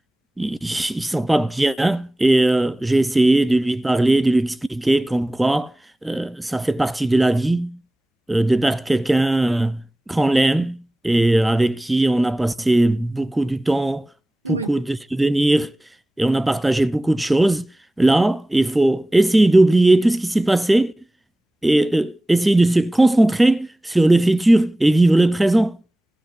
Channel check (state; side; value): normal; both; correlation 0.98